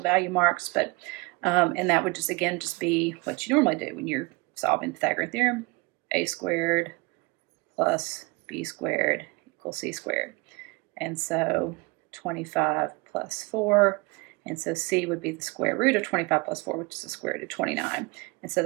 value marks, but and that would just be what you normally do when you're solving the Pythagorean theorem. A squared plus b squared equals c squared. And so 25 plus 4, and so c would be the square root of 25 plus 4, which is the square root of 29. And so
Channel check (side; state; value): left; quieter; 26.8 dB